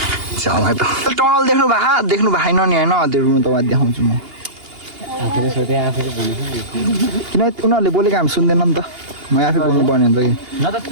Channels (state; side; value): late; left; 2.8 ms